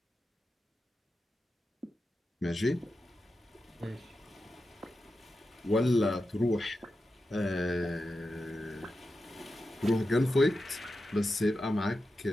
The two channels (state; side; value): normal; both; correlation 0.90